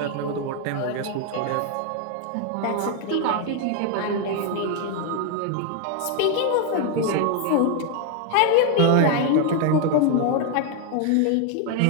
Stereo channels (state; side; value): different; both; correlation 0.01